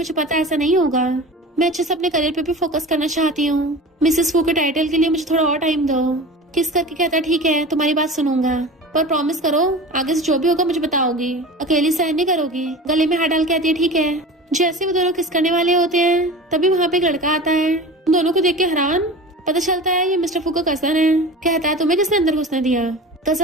पता ऐसा नहीं होगा, मैं अच्छे से अपने करियर पे भी फोकस करना चाहती हूँ। मिसेस वू के टाइटल के लिए मुझे थोड़ा और टाइम दो। किस करके कहता ठीक है तुम्हारी बात सुनूंगा, पर प्रॉमिस करो आगे से जो भी होगा मुझे बताओगी, अकेली सहन नहीं करोगी। गले में हाथ डाल कहती है ठीक है। जैसे वो दोनों किस करने वाले होते हैं तभी वहाँ पे एक लड़का आता है। उन दोनों को देख के हैरान, पता चलता है ये मिस्टर फू का कजन है। कहता है तुम्हें किसने अंदर घुसने दिया।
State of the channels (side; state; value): both; normal; correlation 0.35